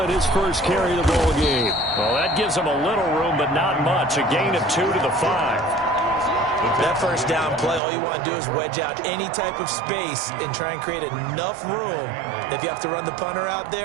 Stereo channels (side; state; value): left; drops out; at 7.8 s